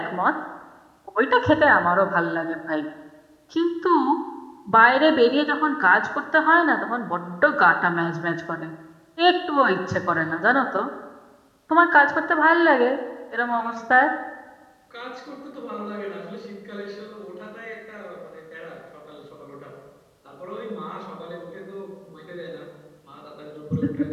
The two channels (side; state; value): both; identical; correlation 1.00